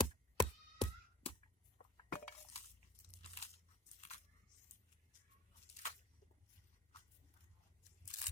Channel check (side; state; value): both; normal; correlation 0.40